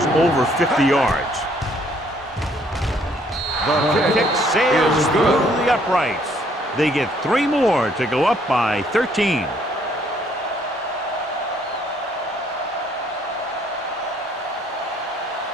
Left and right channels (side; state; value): both; normal; correlation 0.65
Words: over 50 yards. The Kick sails through the uprights. They get 3 more to go up by 13.